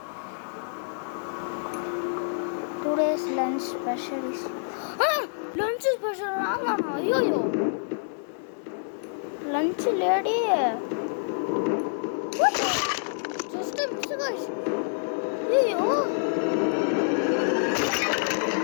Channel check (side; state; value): right; silent; digital silence